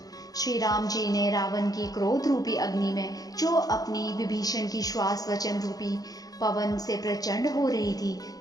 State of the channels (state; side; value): late; right; 0.18 ms